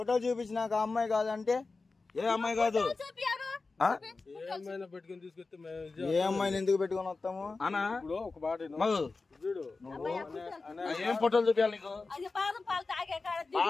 చూపించినాక అమ్మాయి కాదంటే? ఏ అమ్మాయి కాదు? ఏమైనా పెట్టుకుని తీసుకొస్తే ఏ అమ్మాయిని ఎందుకు పెట్టుకుని వస్తాము అన్నా? ఇప్పుడు ఒక మాట చూడు. ఏం ఫోటోలు చూపించాలి నీకు? బాదం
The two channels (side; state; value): right; quieter; 3.9 dB